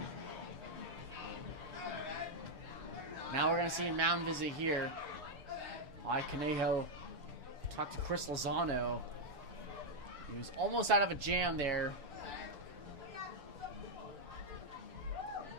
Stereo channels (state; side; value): late; left; 6.8 ms